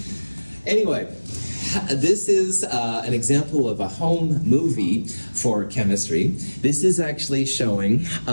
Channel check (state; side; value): inverted; both; correlation -1.00